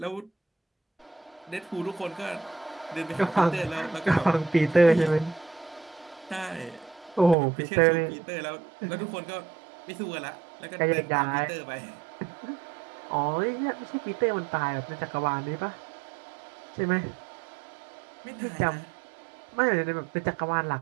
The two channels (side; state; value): left; drops out; at 7.4 s